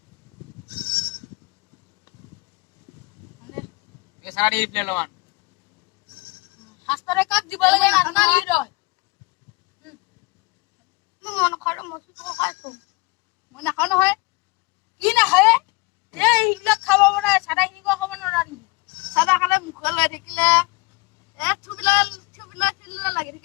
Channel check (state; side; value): quieter; right; 25.9 dB